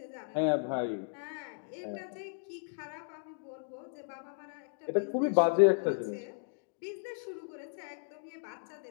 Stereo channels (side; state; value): right; silent; digital silence